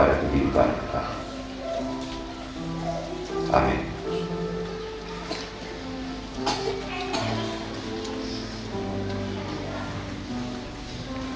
kehidupan kekal. Amin.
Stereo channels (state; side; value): identical; both; correlation 1.00